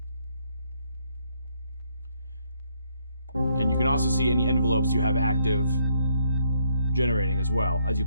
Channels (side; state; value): both; inverted; correlation -0.72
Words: And you can also see any envelopes you have active generating as well as you